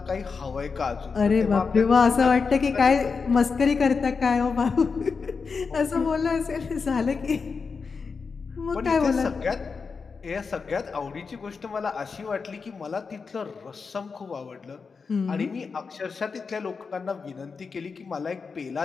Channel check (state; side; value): quieter; right; 5.1 dB